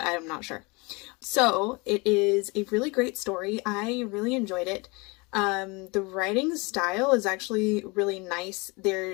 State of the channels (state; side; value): quieter; right; 27.2 dB